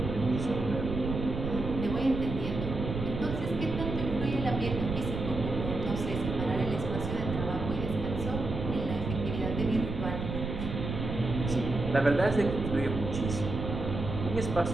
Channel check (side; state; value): right; noise; rumble, 5 dB below the sound